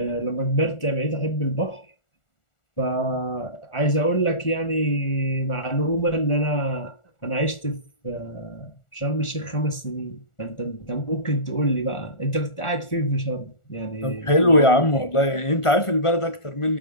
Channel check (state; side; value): late; right; 1.4 ms